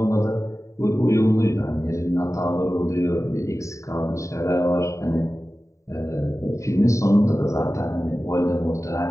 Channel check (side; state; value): right; late; 0.15 ms